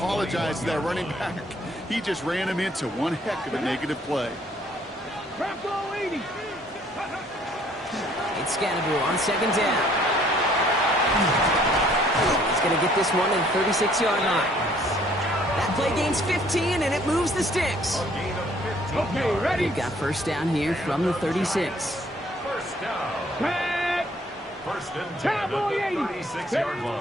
to that running back. He just ran him into one heck of a negative play. Bravo 80. It's Scatterboo on 2nd down. He's going to get this one to the 36-yard line. That play gains 15, and it moves the sticks. Okay, ready. We've got 1st down here from the 36. 1st down. Back. 1st and 10 at the 36-yard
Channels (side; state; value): both; normal; correlation 0.61